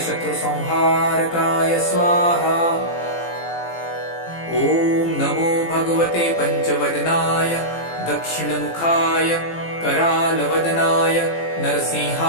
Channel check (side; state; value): right; late; 18 ms